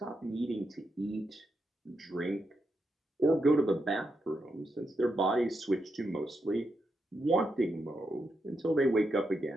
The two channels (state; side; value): normal; both; correlation 0.83